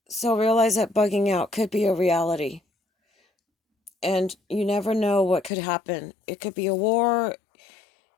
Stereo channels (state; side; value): drops out; right; at 5.5 s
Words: So realize that bugging out could be a reality. And you never know what could happen. It could be a war.